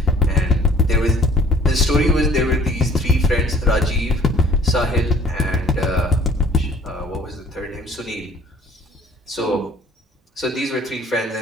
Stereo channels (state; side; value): normal; both; correlation 0.54